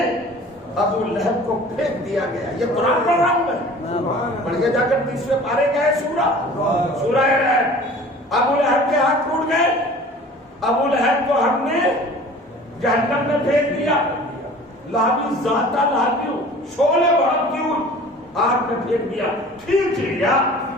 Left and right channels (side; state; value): both; normal; correlation 0.45